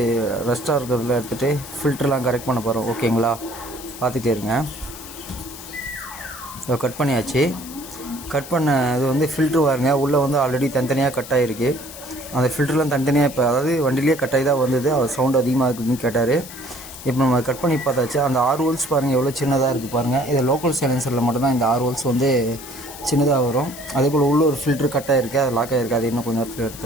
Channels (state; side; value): noise; left; hiss, 14 dB below the sound